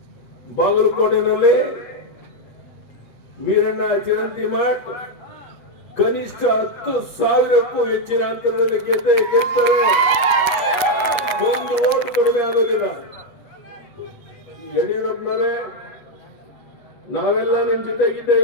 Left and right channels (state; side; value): late; right; 8.3 ms